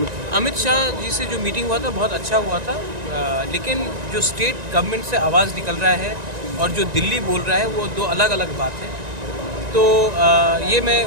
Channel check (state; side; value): late; left; 1.9 ms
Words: अमित शाह जी से जो मीटिंग हुआ था बहुत अच्छा हुआ था, लेकिन जो स्टेट गवर्नमेंट से आवाज़ निकल रहा है और जो दिल्ली बोल रहा है वो 2 अलग अलग बात है। तो ये मैं